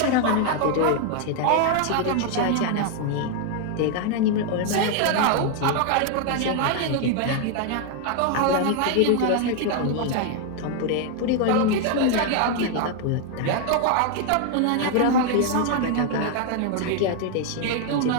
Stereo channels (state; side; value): different; both; correlation 0.00